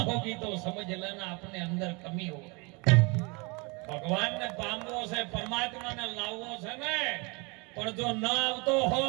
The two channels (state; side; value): quieter; left; 29.4 dB